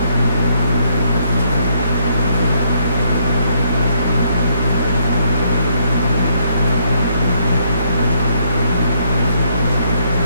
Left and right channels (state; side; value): inverted; both; correlation -0.71